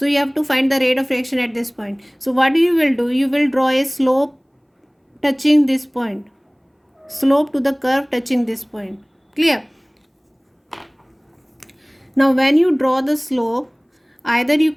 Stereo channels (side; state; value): both; identical; correlation 1.00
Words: you have to find the rate of reaction at this point. So what you will do, you will draw a slope touching this point, slope to the curve touching this point. Clear? Now when you draw the slope, either you